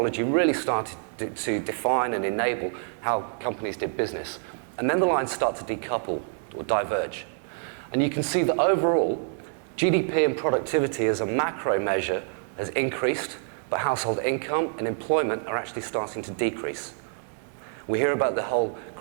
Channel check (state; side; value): silent; left; digital silence